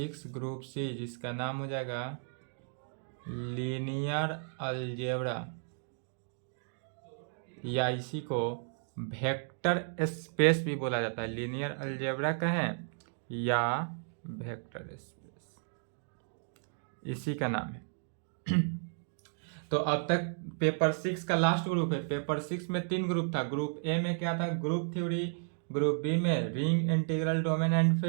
group C जिसका नाम हो जाएगा लीनियर अलजेब्रा, या इसी को वेक्टर स्पेस भी बोला जाता है। लीनियर अलजेब्रा कहें या वेक्टर स्पेस, इसी का नाम है। तो अब तक पेपर 6 का लास्ट ग्रुप है। पेपर 6 में 3 ग्रुप था। ग्रुप ए में क्या था? Group theory. ग्रुप बी में ring integral domain and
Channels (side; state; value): left; silent; digital silence